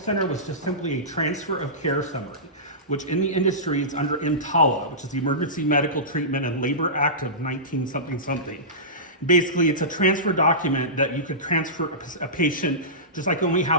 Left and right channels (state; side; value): normal; both; correlation -0.20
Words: was just simply a transfer of care summary, which in the industry is under EMTALA, which is the Emergency Medical Treatment and Labor Act of 19-something. Basically, it's a transfer document that you could transfer a patient, just like when we